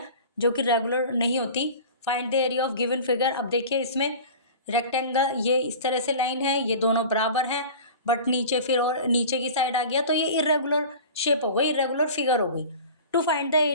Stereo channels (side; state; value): both; inverted; correlation -0.38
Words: जो कि रेगुलर नहीं होती. Find the area of given figure. अब देखिए इसमें रेक्टेंगल, ये इस तरह से लाइन है, ये दोनों बराबर हैं, बट नीचे फिर और नीचे की साइड आ गया तो ये इरेगुलर शेप हो गई, इरेगुलर फिगर हो गई. To find the